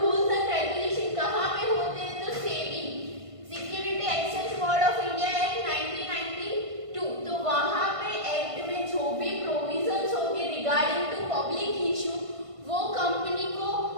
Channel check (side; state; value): left; late; 1.5 ms